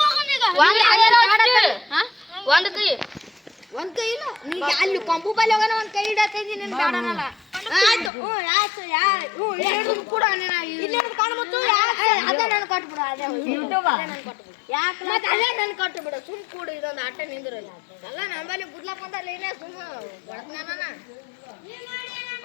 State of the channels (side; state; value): right; drops out; at 8.1 s